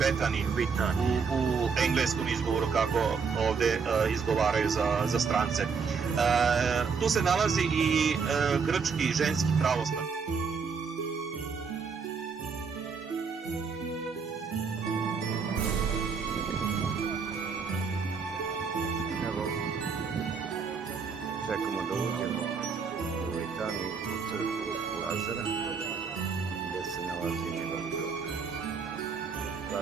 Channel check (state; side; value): quieter; left; 5.6 dB